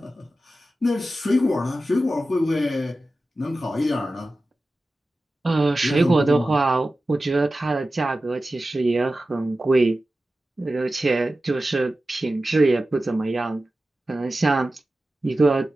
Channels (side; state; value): both; normal; correlation 0.94